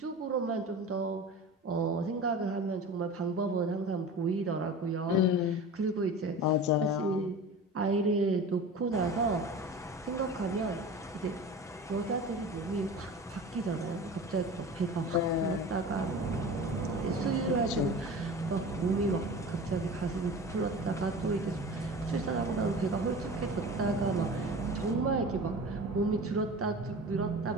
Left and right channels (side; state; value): both; normal; correlation 0.35